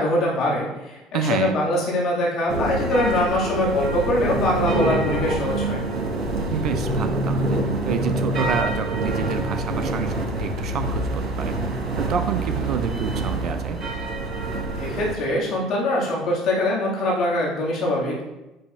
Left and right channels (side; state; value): both; normal; correlation 0.43